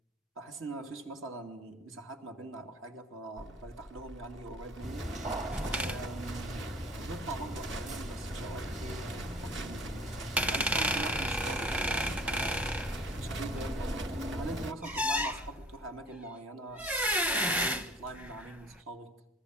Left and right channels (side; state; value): both; normal; correlation 0.48